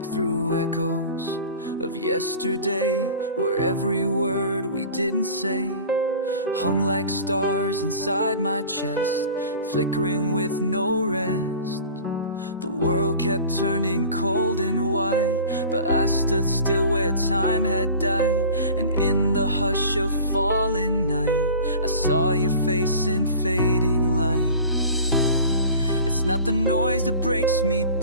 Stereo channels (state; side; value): inverted; both; correlation -0.40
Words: through echoes of yesterday, where every word we didn't say hung like stars inside my chest, flickering with no rest. The world kept turning cold and white, but I stood still where time had died. And in the hush of falling night, I saw your face in fading light. It's not the noise that breaks me